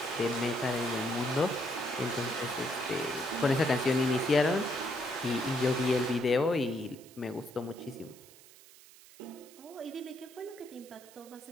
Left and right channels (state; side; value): noise; right; hiss, 22 dB below the sound